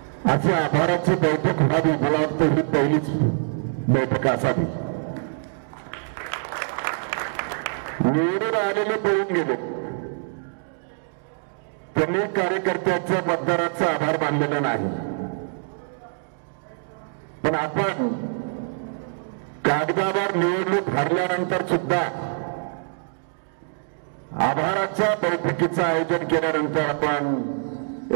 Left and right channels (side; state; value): left; silent; digital silence